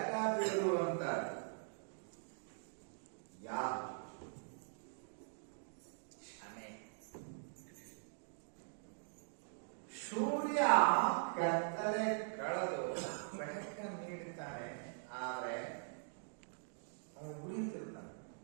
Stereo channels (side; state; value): left; silent; digital silence